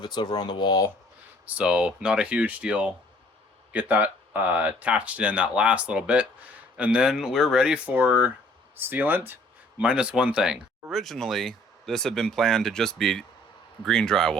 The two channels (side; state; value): both; normal; correlation 0.58